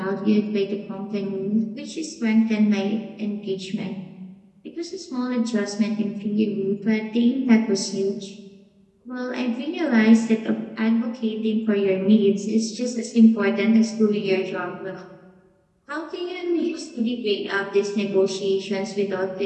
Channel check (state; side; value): identical; both; correlation 1.00